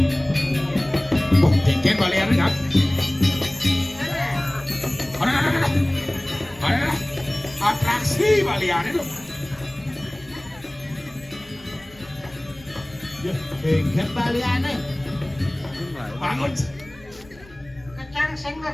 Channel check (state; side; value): noise; left; rumble, 24 dB below the sound